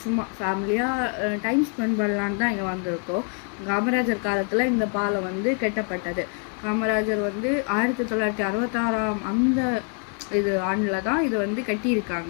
சும்மா ஃபேமிலியாக டைம் ஸ்பெண்ட் பண்ணலான்னு தான் இங்கே வந்திருக்கோம். காமராஜர் காலத்தில் இந்த பாலம் கட்டப்பட்டது. காமராஜர் 1966 அந்த ஆண்டில் தான் இது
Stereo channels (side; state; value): right; quieter; 39.9 dB